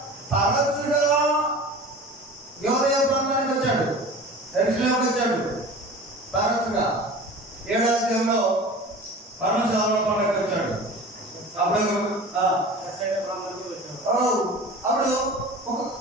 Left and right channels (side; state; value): both; normal; correlation 0.38